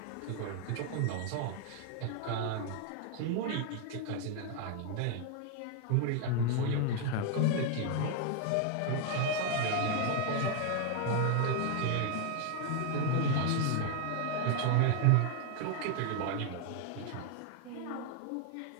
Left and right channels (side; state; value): both; different; correlation 0.00